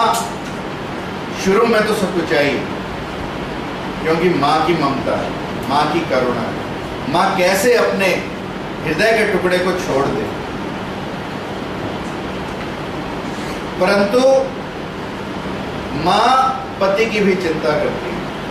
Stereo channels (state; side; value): identical; both; correlation 1.00